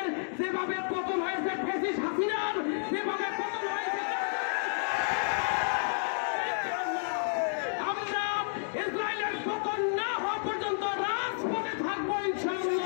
যেভাবে পতন হয়েছে ফ্যাসিস্ট হাসিনার, যেভাবে পতন হয়েছে, আমরা ইসরায়েলের পতন না হওয়া পর্যন্ত রাজপথে থাকবো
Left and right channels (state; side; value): silent; right; digital silence